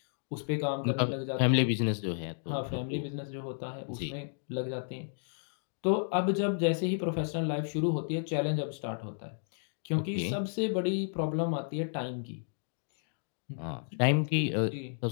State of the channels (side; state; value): right; silent; digital silence